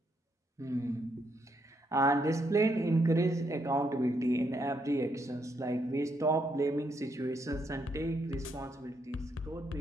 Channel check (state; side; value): normal; both; correlation 0.76